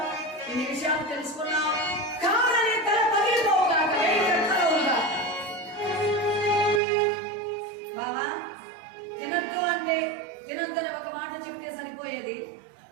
ఇన్ని విషయాలు తెలుసుకున్నావు, కావాలని తల పగిలిపోవుగాక, బావా తినద్దు అంటే తినొద్దని ఒక మాట చెబితే సరిపోయేది.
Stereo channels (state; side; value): drops out; left; at 6.8 s